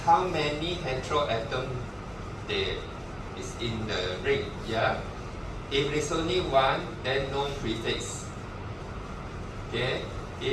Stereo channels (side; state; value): both; identical; correlation 1.00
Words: how many heteroatoms there is in the ring. Yeah. If it's only 1, then no prefix. Okay.